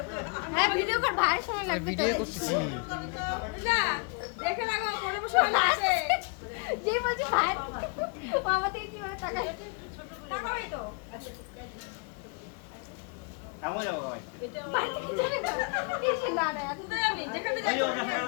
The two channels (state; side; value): quieter; right; 35.7 dB